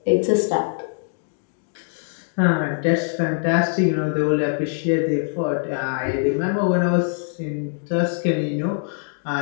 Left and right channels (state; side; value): silent; right; 59 dB below the other